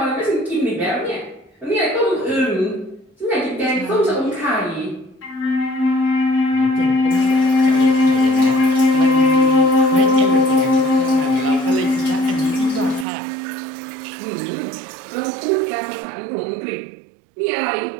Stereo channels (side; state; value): left; drops out; at 13.1 s